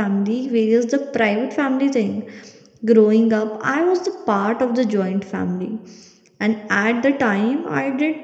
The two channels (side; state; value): both; identical; correlation 1.00